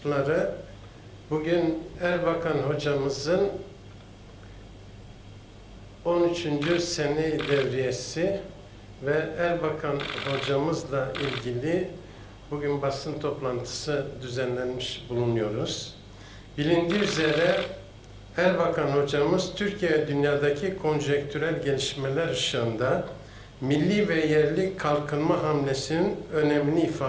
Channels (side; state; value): both; identical; correlation 1.00